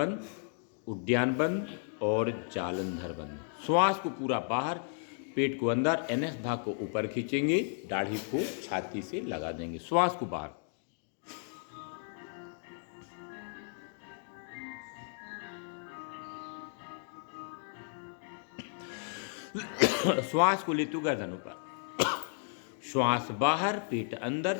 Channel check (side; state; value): right; silent; 55 dB below the other